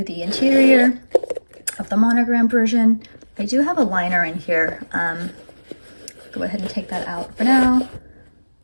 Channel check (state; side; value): inverted; both; correlation -1.00